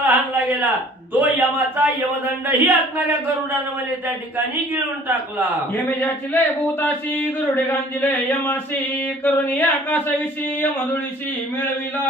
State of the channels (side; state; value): both; normal; correlation 0.52